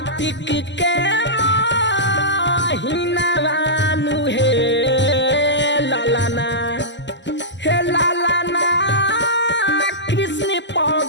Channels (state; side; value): late; right; 0.52 ms